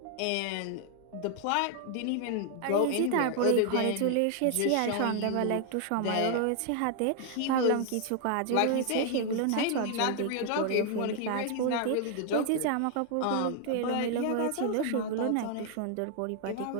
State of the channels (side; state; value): both; different; correlation 0.00